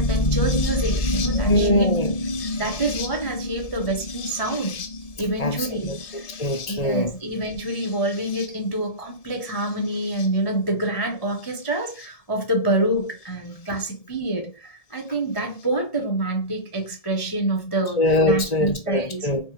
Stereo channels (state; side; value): late; right; 1.7 ms